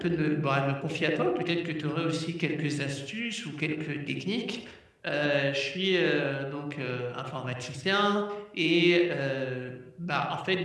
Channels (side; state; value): both; identical; correlation 1.00